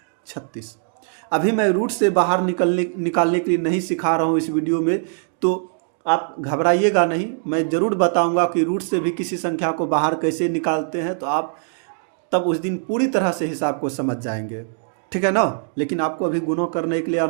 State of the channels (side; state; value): left; silent; digital silence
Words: अभी मैं रूट से बाहर निकालने के लिए नहीं सिखा रहा हूँ इस वीडियो में, तो आप घबराइएगा नहीं, मैं ज़रूर बताऊंगा कि रूट से भी किसी संख्या को बाहर कैसे निकालते हैं, तो आप तब उस दिन पूरी तरह से हिसाब को समझ जाएंगे, ठीक है ना। लेकिन आपको अभी गुणा करने के लिए